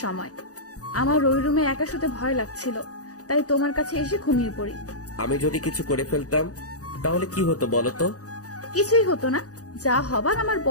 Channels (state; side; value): late; right; 0.67 ms